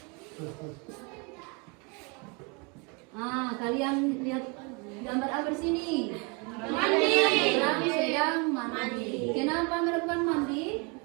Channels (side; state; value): left; quieter; 31.1 dB